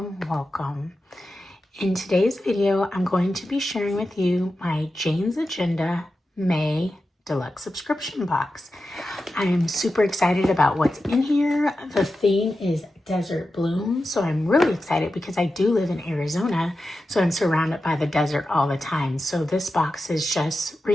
welcome. In today's video, I'm going to be sharing with you my Jane's Agenda May Deluxe Subscription Box. I am super excited about what's in here. The theme is Desert Bloom, so I'm really excited because I do live in Arizona, so I'm surrounded by the desert all the time. So this box is just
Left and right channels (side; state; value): both; normal; correlation 0.91